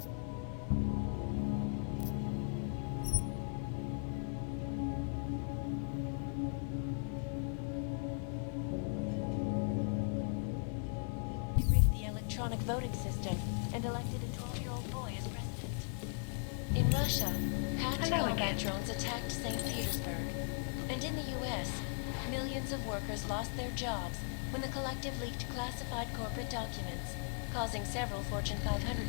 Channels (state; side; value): silent; right; 53 dB below the other